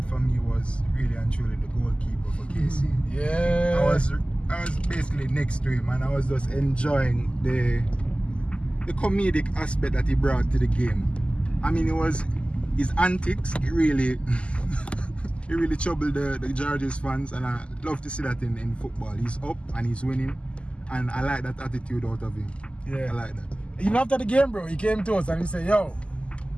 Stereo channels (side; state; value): right; late; 0.056 ms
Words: for me was really and truly the goalkeeper for KC. Yeah. I was basically next to him and I was just enjoying the comedic aspect that he brought to the game. I mean, it was his antics. It really he really troubled the Georges fans, and I love to see that in football. He's up and he's winning, and I like that attitude out of him. Yeah. I like that. Even after the game, bro, he came to us and he said, yo,